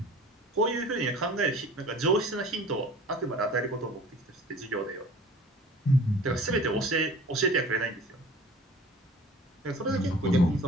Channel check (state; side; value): normal; both; correlation 0.45